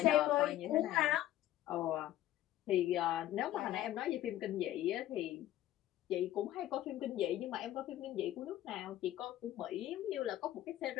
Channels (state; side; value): quieter; right; 13.7 dB